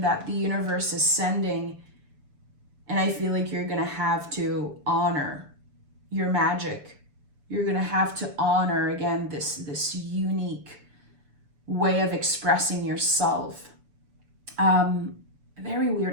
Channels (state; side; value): late; left; 7.0 ms